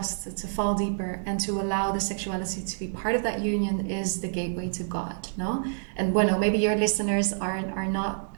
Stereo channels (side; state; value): left; silent; digital silence